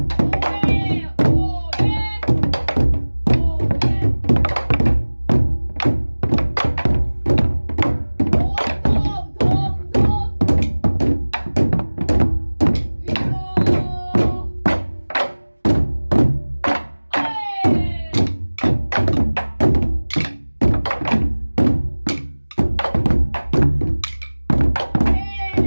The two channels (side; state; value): both; inverted; correlation -1.00